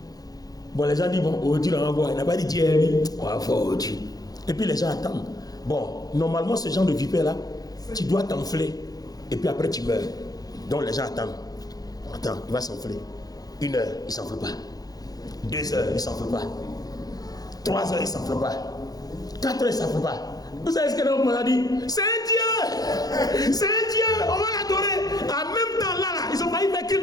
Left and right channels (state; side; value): late; right; 0.18 ms